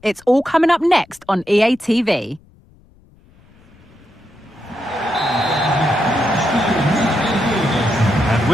It's all coming up next on EA TV. And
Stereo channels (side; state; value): left; noise; rumble, 28 dB below the sound